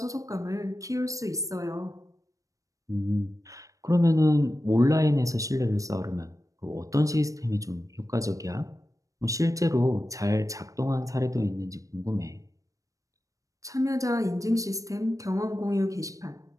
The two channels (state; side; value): late; left; 0.16 ms